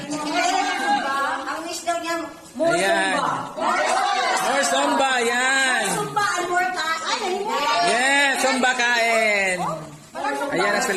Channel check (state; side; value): identical; both; correlation 1.00